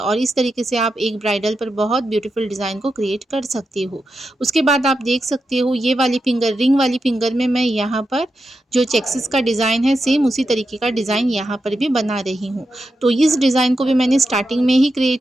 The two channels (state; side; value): normal; both; correlation 0.88